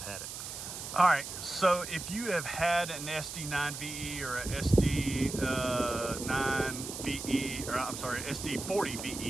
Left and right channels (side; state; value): right; noise; hiss, 8 dB below the sound